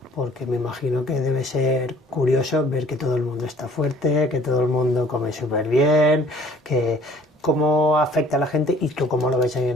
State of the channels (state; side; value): normal; both; correlation 0.54